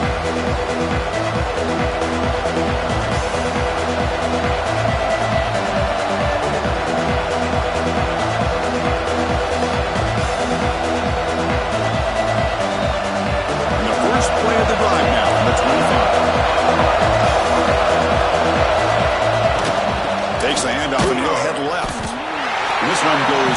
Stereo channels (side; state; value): both; identical; correlation 1.00